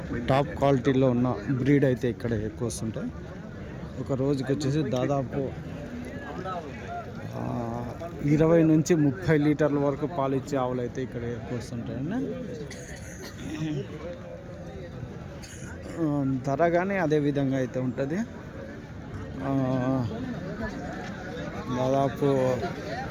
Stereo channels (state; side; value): identical; both; correlation 1.00